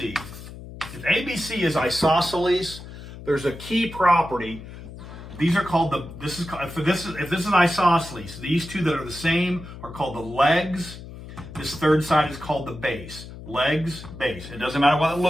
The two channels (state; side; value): noise; left; hum, 14 dB below the sound